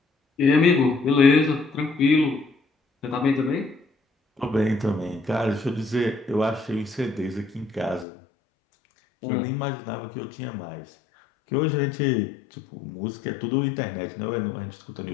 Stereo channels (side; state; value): right; drops out; at 8.1 s